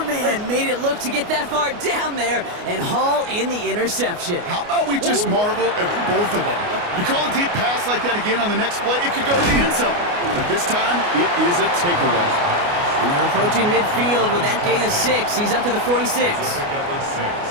man made it look to get that far down there and haul in the interception. How about we just marvel at both of them? You call a deep pass like that again on the next play, it could go to the end zone. But this time, it is a takeaway. And they're approaching midfield with that gain of 6. He's up to the 46.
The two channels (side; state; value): left; late; 29 ms